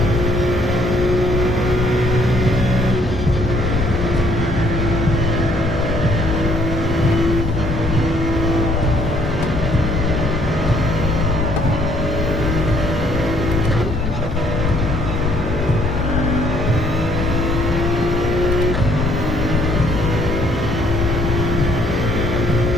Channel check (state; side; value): normal; both; correlation 0.64